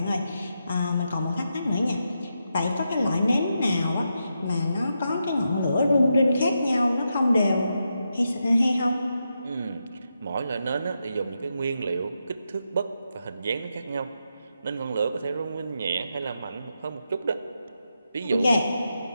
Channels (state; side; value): inverted; both; correlation -0.85